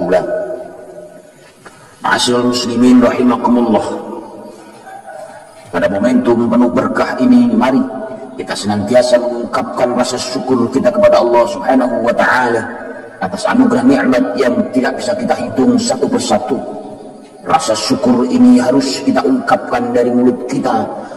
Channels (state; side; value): identical; both; correlation 1.00